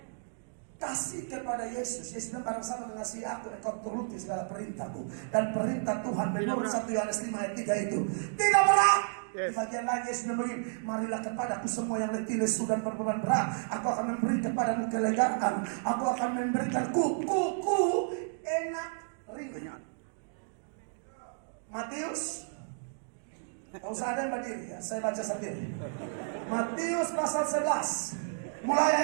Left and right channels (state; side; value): silent; left; digital silence